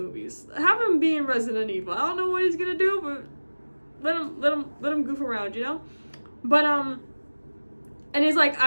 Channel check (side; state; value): both; inverted; correlation -1.00